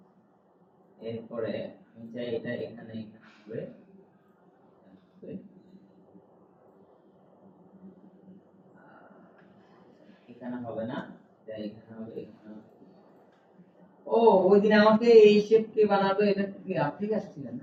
এরপরে আমি চাই এটা এখানে হবে, এখানে হবে না, তাই এখানে হবে, এখানে হবে। ও, ওই দিন আমাকে এই শেপ কে বানাবে, এটা কি আপনি আসছিলেন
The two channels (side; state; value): both; identical; correlation 1.00